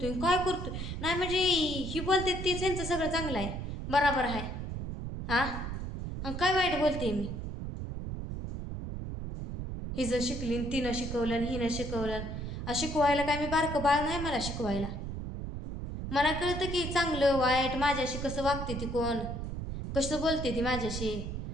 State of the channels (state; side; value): noise; right; rumble, 5 dB below the sound